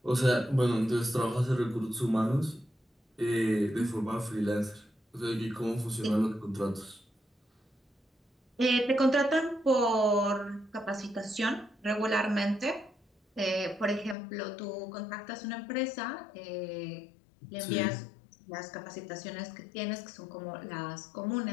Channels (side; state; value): right; drops out; at 14.2 s